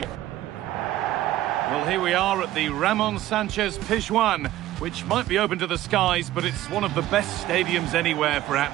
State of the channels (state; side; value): quieter; left; 14.6 dB